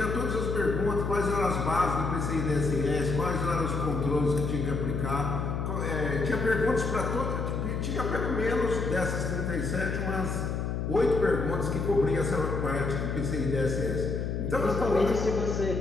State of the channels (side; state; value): left; noise; hum, 2 dB below the sound